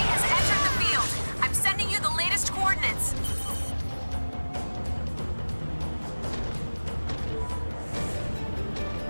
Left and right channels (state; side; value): inverted; both; correlation -1.00